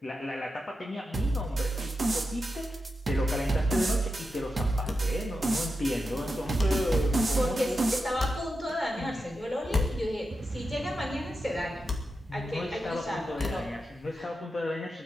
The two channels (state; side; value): normal; both; correlation 0.89